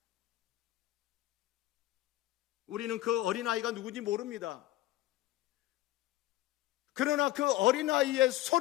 우리는 그 어린아이가 누군지 모릅니다. 그러나 그 어린아이의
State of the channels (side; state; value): right; quieter; 15.6 dB